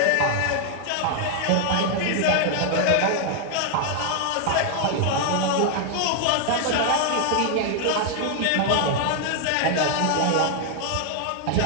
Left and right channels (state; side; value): different; both; correlation 0.00